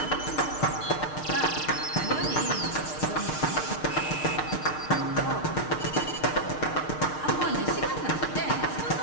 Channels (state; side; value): late; right; 6.6 ms